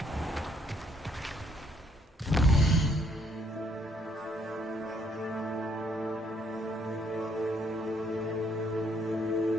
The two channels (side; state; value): both; normal; correlation 0.68